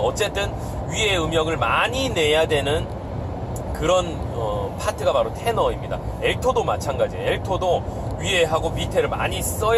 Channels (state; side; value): identical; both; correlation 1.00